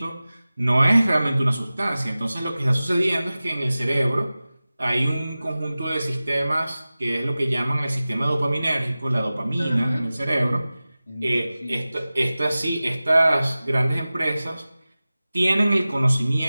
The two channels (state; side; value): inverted; both; correlation -0.97